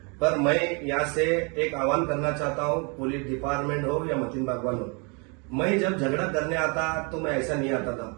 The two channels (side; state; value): left; quieter; 33.3 dB